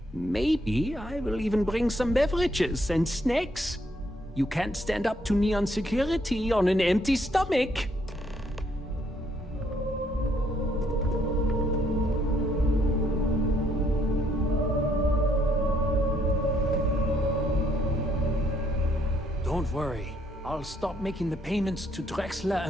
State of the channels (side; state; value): both; normal; correlation 0.70